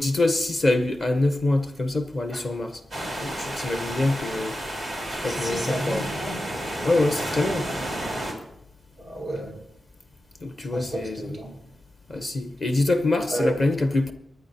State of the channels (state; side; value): normal; both; correlation 0.92